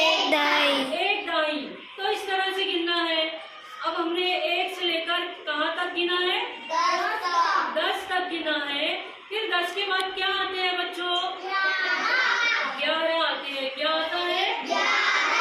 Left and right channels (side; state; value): both; identical; correlation 1.00